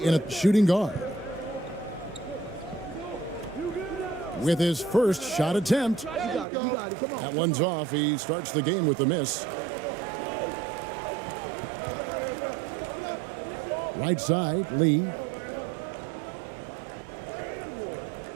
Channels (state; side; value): drops out; left; at 6.5 s